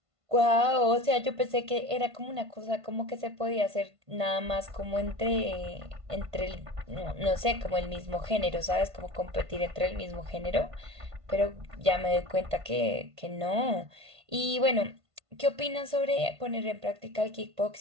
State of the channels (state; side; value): late; left; 1.5 ms